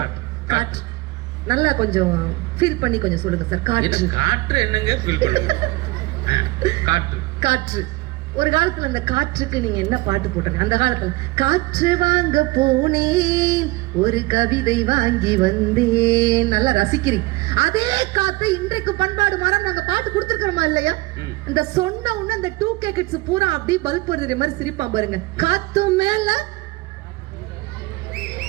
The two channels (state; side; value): quieter; left; 21.7 dB